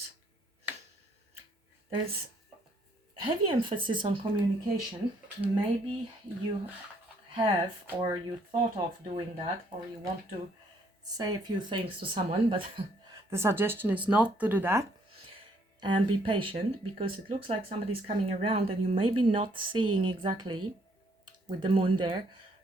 There's heavy emphasis on communication. Maybe you have, or you thought of doing that, or you want to say a few things to someone, but the suggestion is not to do that. And be patient, because it looks like somebody's coming around and you may be not seeing exactly, with the moon there,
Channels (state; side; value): normal; both; correlation 0.67